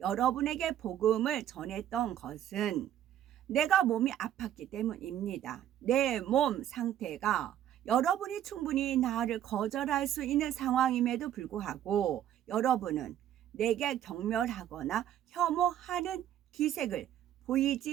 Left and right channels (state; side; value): quieter; left; 11.2 dB